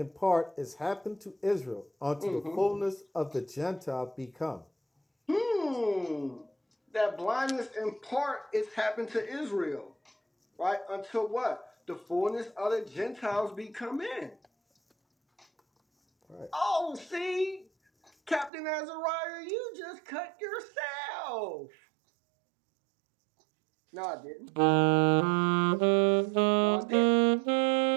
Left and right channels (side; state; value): left; drops out; at 18.5 s